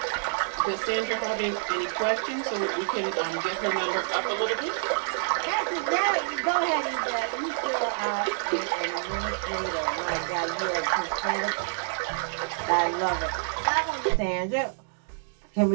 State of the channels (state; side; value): silent; left; 60 dB below the other